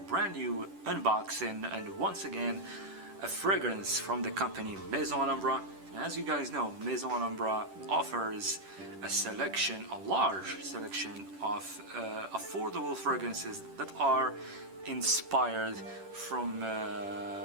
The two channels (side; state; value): left; late; 10 ms